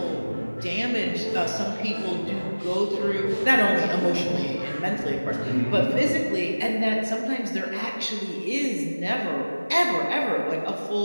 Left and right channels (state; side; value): inverted; both; correlation -1.00